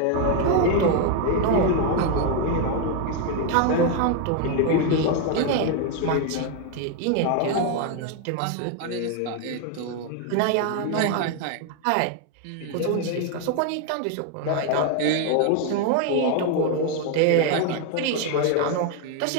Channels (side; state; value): both; different; correlation 0.01